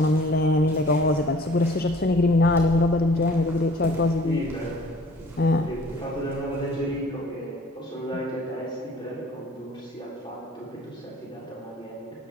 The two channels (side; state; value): both; normal; correlation 0.52